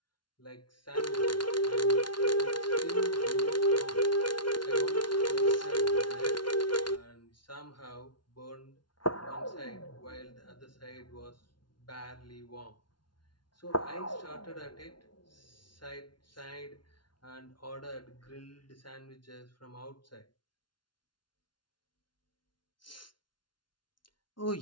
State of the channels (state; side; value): late; right; 0.71 ms